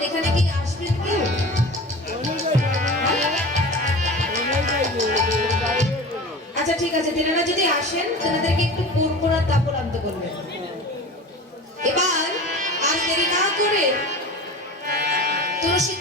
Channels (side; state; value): both; normal; correlation 0.35